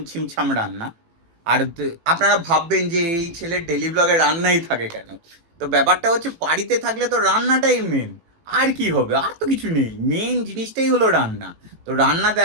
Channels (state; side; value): late; left; 18 ms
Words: ছিমছাম রান্না। আর আপনারা ভাববেন যে এই ছেলের ডেলি ব্লগে রান্নাই থাকে কেন? তো ব্যাপারটা হচ্ছে বাড়িতে থাকলে তো রান্নাটাই মেন। আর কি হবে, আর তো কিছু নেই, মেন জিনিসটাই হলো রান্না। তো রান্না